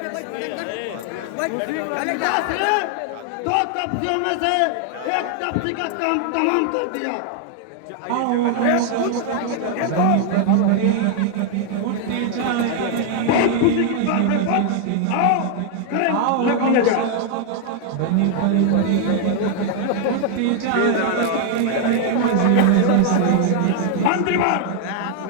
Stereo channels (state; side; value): different; both; correlation 0.00